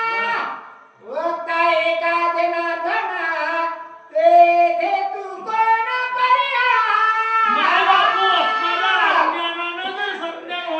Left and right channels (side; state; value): both; identical; correlation 1.00